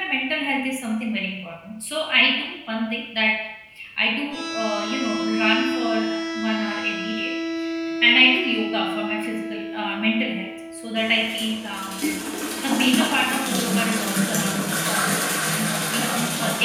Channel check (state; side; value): identical; both; correlation 1.00